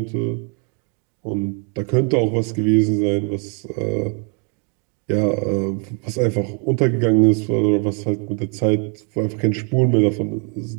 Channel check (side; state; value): left; quieter; 38.1 dB